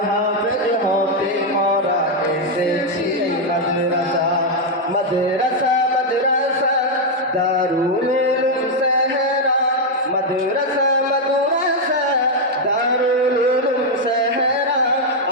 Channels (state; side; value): normal; both; correlation 0.00